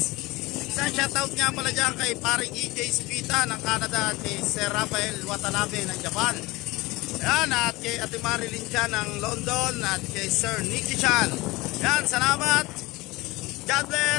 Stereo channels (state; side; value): quieter; right; 21.4 dB